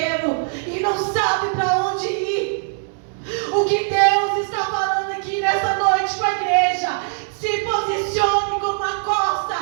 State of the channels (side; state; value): left; silent; 64 dB below the other